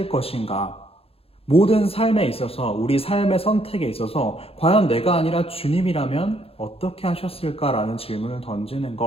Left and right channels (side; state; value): right; late; 0.28 ms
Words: 것인가? 모든 삶에 있어서, 우리 삶의 선택에 있어서 과연 내가 아니라 주님이라면 어떻게 하셨을까라는 질문을 던지는